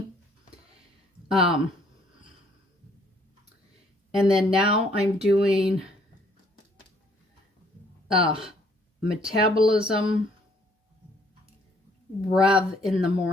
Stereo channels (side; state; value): both; normal; correlation 0.64